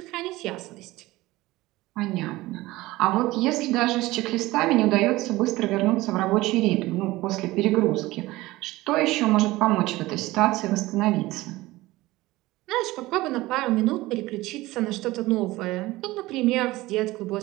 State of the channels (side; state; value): left; quieter; 18.8 dB